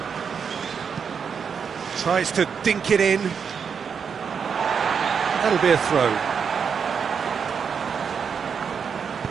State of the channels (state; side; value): quieter; left; 6.6 dB